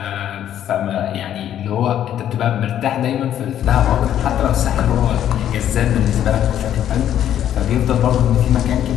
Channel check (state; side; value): quieter; right; 10.8 dB